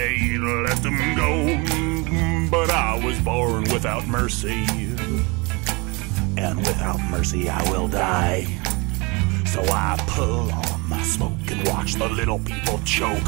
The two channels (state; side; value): quieter; left; 27.8 dB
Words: to let them go. But I was born without mercy, and without mercy I will die. So I pull on my smoke and watch the little people